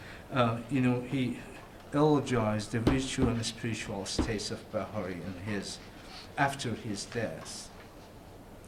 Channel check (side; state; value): both; identical; correlation 1.00